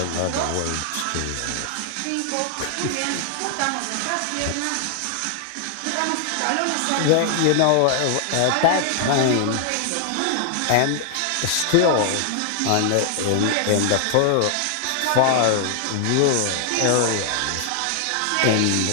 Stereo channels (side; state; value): both; different; correlation 0.00